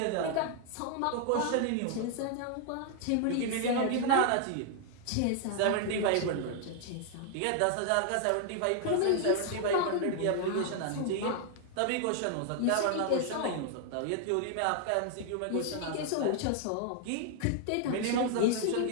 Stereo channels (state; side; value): different; both; correlation 0.00